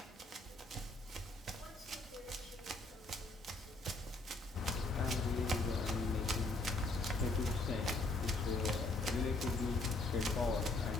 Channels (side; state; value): right; quieter; 3.0 dB